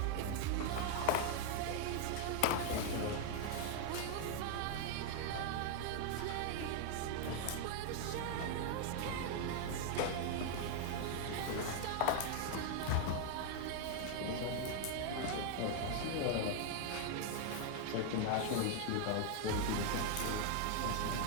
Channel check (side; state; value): both; different; correlation 0.00